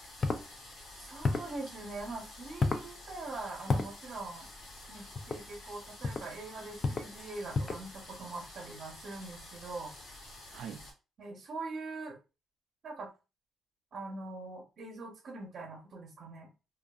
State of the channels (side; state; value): both; normal; correlation 0.83